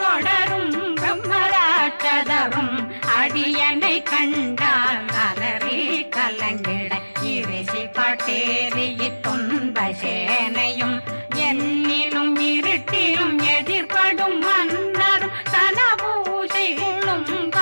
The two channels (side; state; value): both; inverted; correlation -1.00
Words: பிரம்மராட்சதரும் அடியனை கண்டால் அலறி கலங்கிட இரிசி காட்டேறிய துன்ப சேனையும் என்னிலும் இருட்டிலும் எதிர்படும் மன்னரும் தனபூசைகளும்